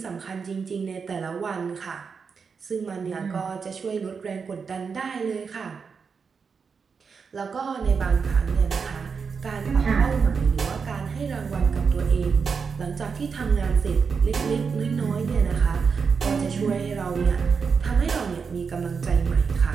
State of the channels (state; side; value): quieter; left; 5.6 dB